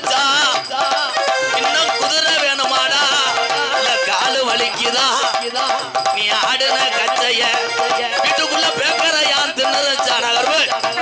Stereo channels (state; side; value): identical; both; correlation 1.00